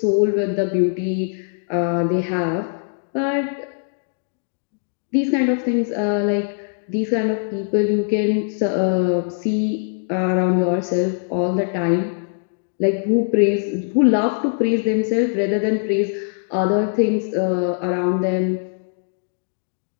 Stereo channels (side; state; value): right; silent; digital silence